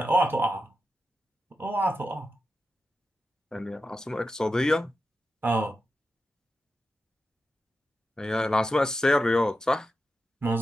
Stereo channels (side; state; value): both; normal; correlation 0.89